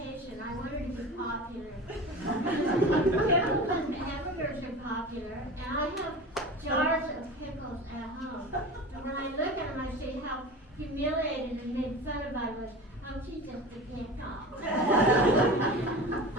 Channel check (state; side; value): normal; both; correlation 0.32